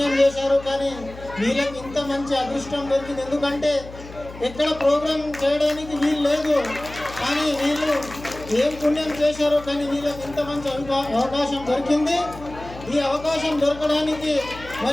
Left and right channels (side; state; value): left; noise; hum, 16 dB below the sound